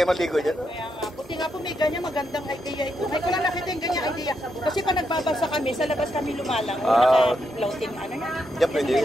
maligo dyan. Buti nga po may ganyan, magandang idea ito. May ko lang nakita yung ganyan idea. Kasi pa nagbabasa kami, sa labas kami lumalang. Naka-floating, ano yan? Dyan pwede.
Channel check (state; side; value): normal; both; correlation 0.81